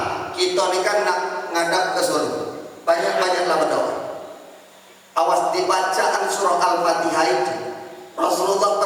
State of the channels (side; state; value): both; identical; correlation 1.00